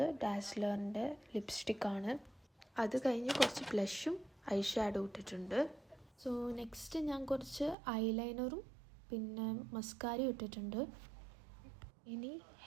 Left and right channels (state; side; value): drops out; left; at 7.8 s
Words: ഡാസ്ലറിൻ്റെ ലിപ്സ്റ്റിക്കാണ്. അത് കഴിഞ്ഞ് കുറച്ച് ബ്ലഷും ഐ ഷാഡോ ഇട്ടിട്ടുണ്ട്. സോ നെക്സ്റ്റ് ഞാൻ കുറച്ച് ഐലൈനറും പിന്നെ മസ്കാരയും ഇട്ടിട്ടുണ്ട്. ഇനി